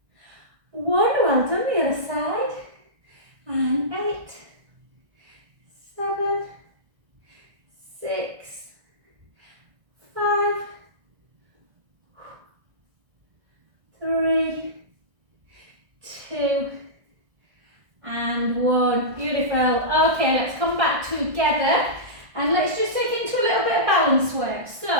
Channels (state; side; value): late; left; 1.6 ms